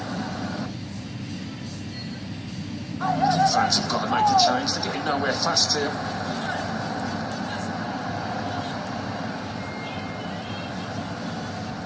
I think fans have got to make a change. They're getting nowhere fast here.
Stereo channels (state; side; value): identical; both; correlation 1.00